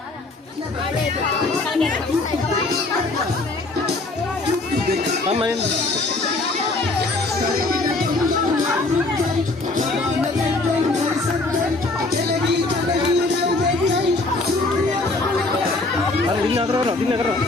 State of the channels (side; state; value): right; quieter; 3.2 dB